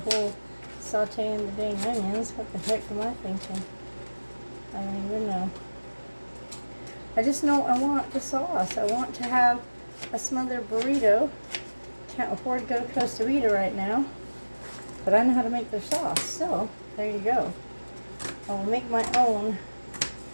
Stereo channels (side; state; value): both; inverted; correlation -1.00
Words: sauteing the dang onions. What the heck am I thinking? I don't even know. I just know I want the sauce. I want to have a smothered burrito. Can't afford to go to Costa Vida right now, but I know how to make their sauce. So there you go. I'll make my own